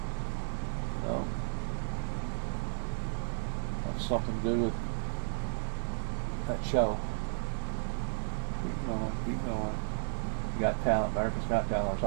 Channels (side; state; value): left; silent; digital silence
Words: No. That's something to do with that show. Keep going, keep going. You Got Talent, America's Got Talent, or